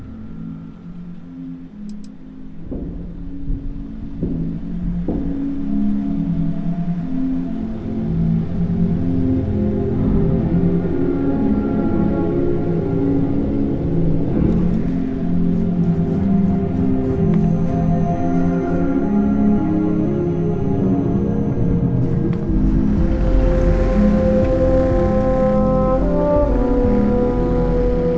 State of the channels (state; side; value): identical; both; correlation 1.00